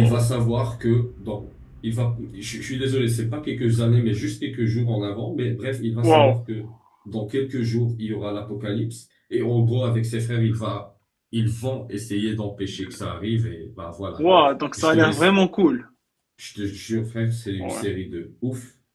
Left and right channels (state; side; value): identical; both; correlation 1.00